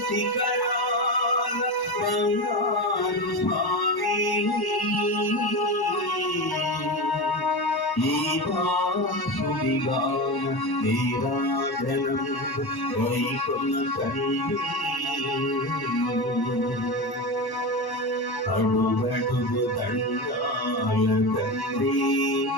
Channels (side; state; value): right; late; 1.1 ms